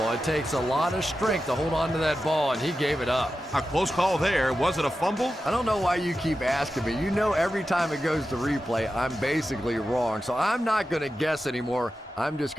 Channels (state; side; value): normal; both; correlation 0.91